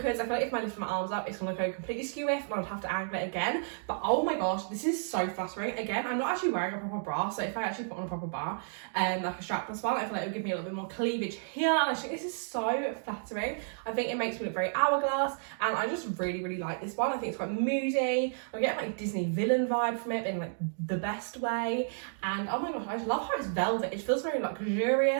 I feel like if I lift my arms up it's gonna go completely skew if, and I'd have to angle it again. But oh my gosh, this is so flattering. Again, I'm not actually wearing a proper bra, so if I actually put on a proper bra, like a strapless one, I feel like it would give me a little bit more cleavage here, and I think this is so flattering. I think it makes me look very hourglass, and I just really like this one. I think it's quite moody. I get like Disney villain vibe from it in like the best way, and oh my gosh, I just love how it's velvet. It feels very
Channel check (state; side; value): silent; left; digital silence